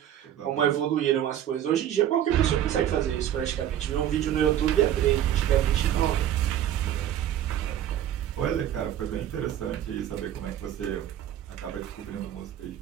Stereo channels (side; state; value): left; quieter; 11.0 dB